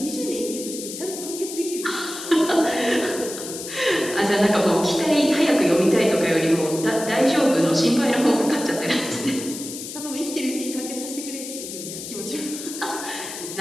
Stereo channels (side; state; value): left; noise; hiss, 9 dB below the sound